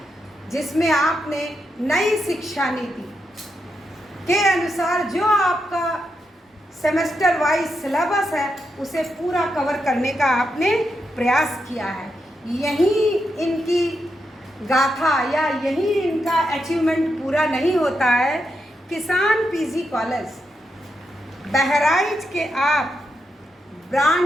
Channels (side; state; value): both; normal; correlation 0.84